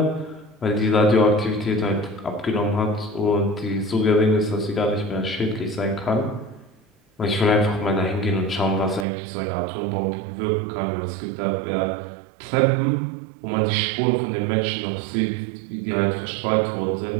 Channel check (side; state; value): left; drops out; at 9.1 s